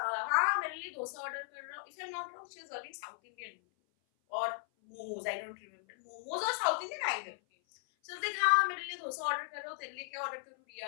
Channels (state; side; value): silent; right; 53 dB below the other